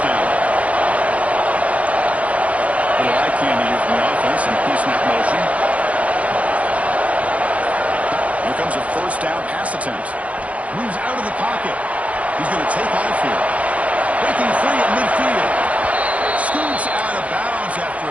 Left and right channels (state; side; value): late; left; 0.066 ms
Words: down. Little eye candy here from the offense and pre-snap motion. Here comes a 1st down pass attempt. Moves out of the pocket. He's going to take off here. Breaking free at midfield. Scoots out of bounds after